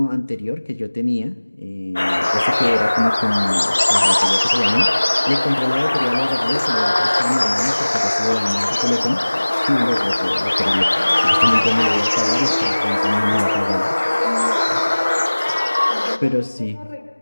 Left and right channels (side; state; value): both; inverted; correlation -1.00